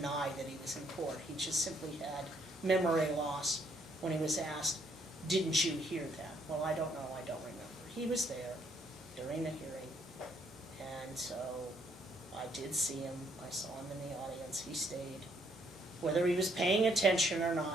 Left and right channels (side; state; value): both; normal; correlation 0.69